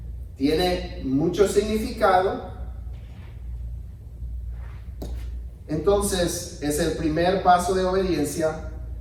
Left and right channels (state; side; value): identical; both; correlation 1.00